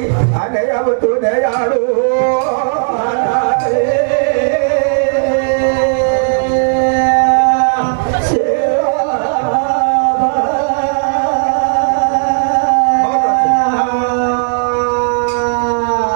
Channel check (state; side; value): silent; left; digital silence